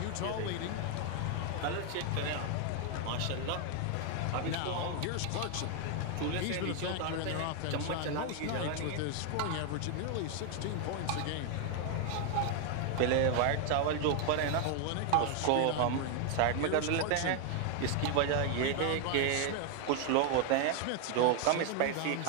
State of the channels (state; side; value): different; both; correlation 0.00